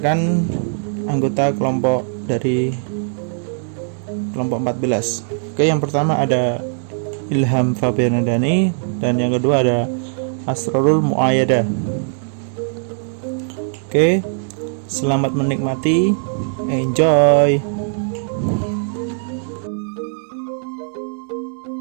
anggota kelompok dari kelompok 14. Oke, yang pertama ada Ilham Fabianadani dan yang kedua ada Asrorul Muayyada. Oke, selamat menikmati, enjoy.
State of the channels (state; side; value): silent; left; 59 dB below the other